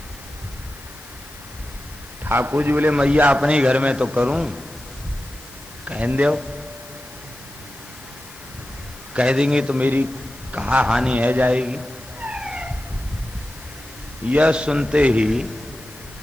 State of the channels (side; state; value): left; noise; hiss, 20 dB below the sound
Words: ठाकुर जी बोले मैया अपने घर में तो करूं, कहन दो, कह देंगे तो मेरी कहा हानि है जाएगी। यह सुनते ही